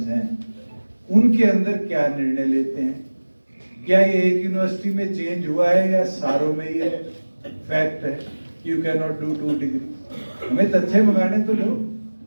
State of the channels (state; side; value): inverted; both; correlation -1.00